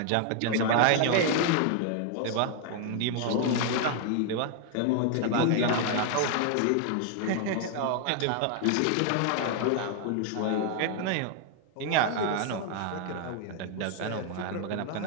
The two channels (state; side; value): different; both; correlation 0.00